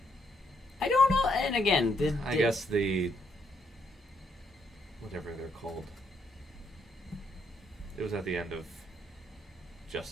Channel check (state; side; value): normal; both; correlation 0.74